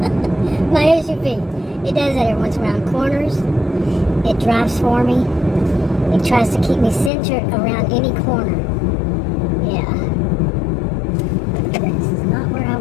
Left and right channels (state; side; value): drops out; right; at 7.1 s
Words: My SUV. It does that every once around corners. It drives for me. It tries to keep me centered around any corner. Yeah. This is not where I